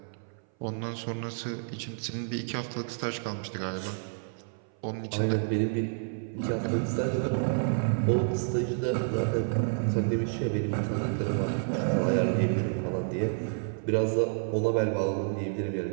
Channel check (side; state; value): left; silent; 57 dB below the other